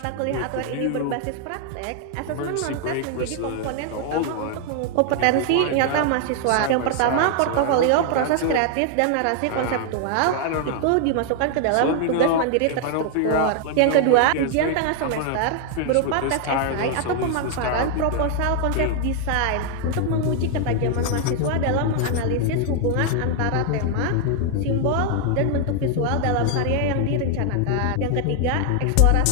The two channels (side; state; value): both; different; correlation 0.00